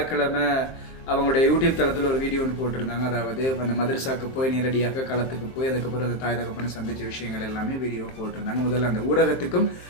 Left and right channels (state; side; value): late; right; 23 ms